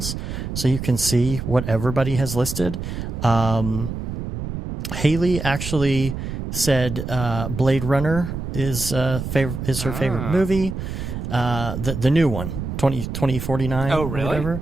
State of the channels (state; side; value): noise; right; rumble, 6 dB below the sound